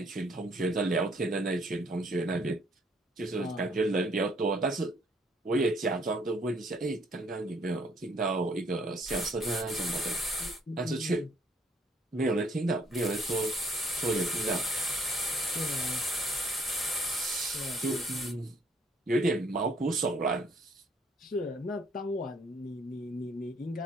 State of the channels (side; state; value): both; normal; correlation 0.65